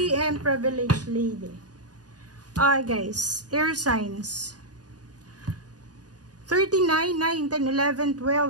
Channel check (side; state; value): left; late; 0.68 ms